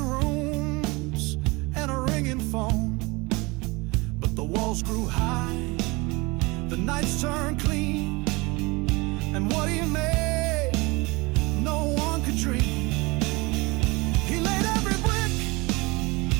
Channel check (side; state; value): left; quieter; 24.9 dB